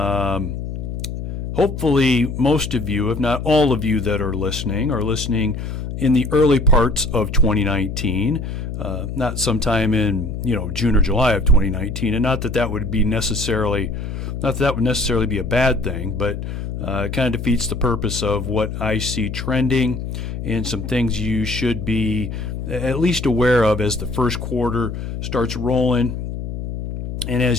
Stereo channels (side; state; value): left; noise; hum, 5 dB below the sound